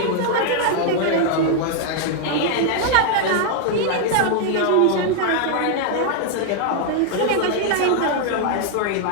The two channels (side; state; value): both; different; correlation 0.00